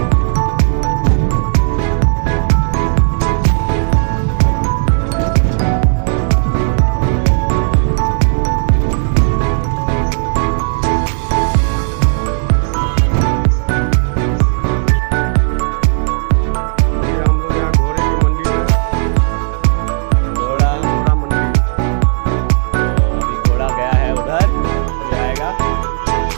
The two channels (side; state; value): left; silent; digital silence